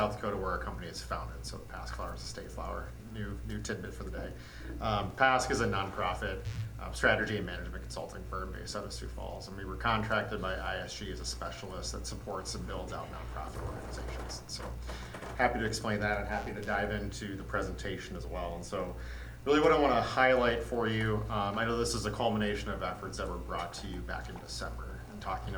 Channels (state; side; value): identical; both; correlation 1.00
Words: Dakota, where our company is founded. So the PASC flower is a state flower. New tidbit for the day. PASC is a nonprofit strategy and management consulting firm based out of Sioux Falls, and we were contracted by ISG as a specialist that supports and builds out nonprofit organizations. So happy to explain that and happy to dive into the presentation as well. And so really what I want to highlight for you, I know this is a culmination of efforts that were brought to you back in December, and talking